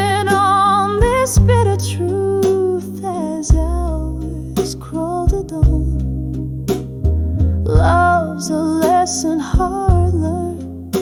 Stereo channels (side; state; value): both; identical; correlation 1.00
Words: on this bitter truth as hours crawl to dawn. Love's a lesson hard learned,